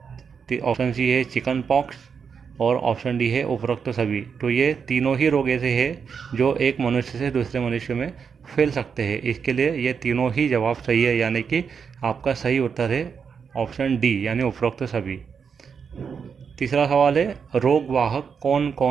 ऑप्शन सी है चिकन पॉक्स। और ऑप्शन डी है उपरोक्त सभी। तो ये तीनों ही रोग ऐसे हैं जो एक मनुष्य से दूसरे मनुष्य में फैल सकते हैं। इसके लिए ये तीनों ही जवाब सही है, यानी कि आपका सही उत्तर है ऑप्शन डी, यानी उपरोक्त सभी। तीसरा सवाल है, रोग वाहक कौन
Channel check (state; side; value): quieter; left; 6.4 dB